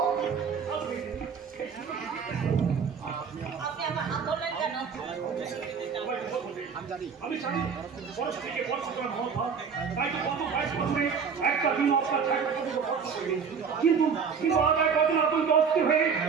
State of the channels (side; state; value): left; quieter; 6.2 dB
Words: আপনি আমার হাত ধরলেন কেন? আমি জানি বয়স থেকে বছর মহা তাই তো কত বাইশ বছরে একটা দিন অবস্থা কিন্তু কিন্তু আগায় কদিন আতঙ্ক অস্থির হয়ে